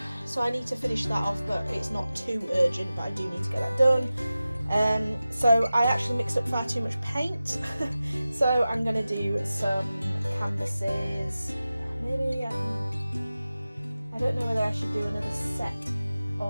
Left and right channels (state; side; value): inverted; both; correlation -0.95